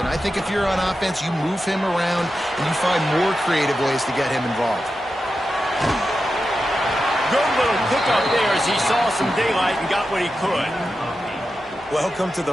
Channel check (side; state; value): both; normal; correlation 0.90